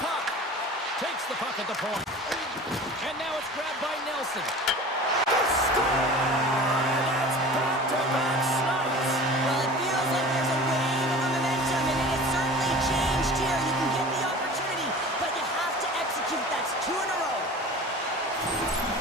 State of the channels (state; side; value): normal; both; correlation 0.39